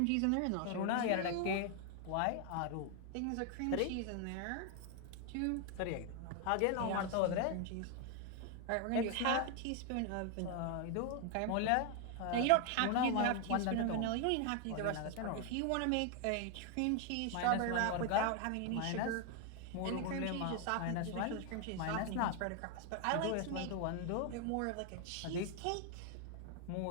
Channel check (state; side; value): different; both; correlation 0.01